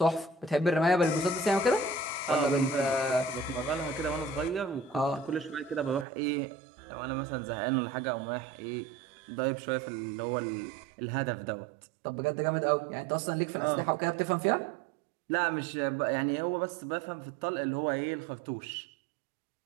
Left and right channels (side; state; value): left; drops out; at 6.1 s